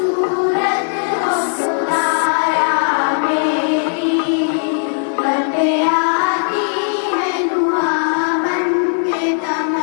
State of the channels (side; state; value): right; silent; digital silence